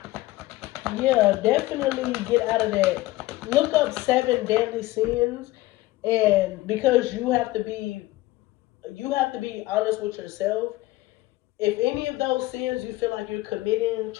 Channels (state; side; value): quieter; right; 18.0 dB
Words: yeah, definitely get out of that. Look up 7 deadly sins. And because you have to be honest with yourself, If any of those sins you feel like you're committing,